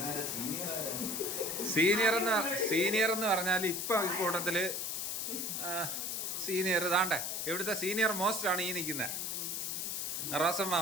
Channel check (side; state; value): left; noise; hiss, 2 dB below the sound